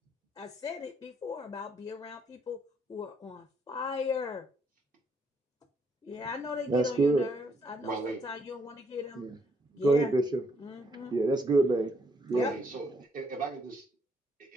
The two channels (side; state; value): both; normal; correlation 0.72